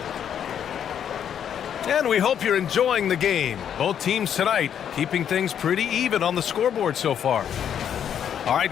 And we hope you're enjoying the game. Both teams tonight keeping things pretty even on the scoreboard so far. All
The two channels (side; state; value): right; quieter; 8.9 dB